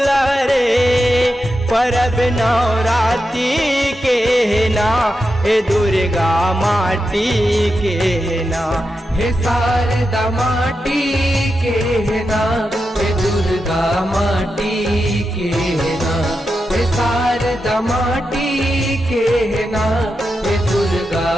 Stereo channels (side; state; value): both; normal; correlation 0.88